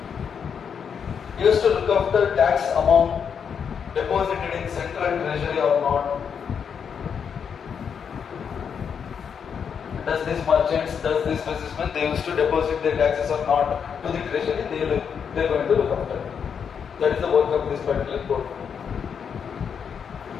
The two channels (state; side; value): quieter; right; 7.1 dB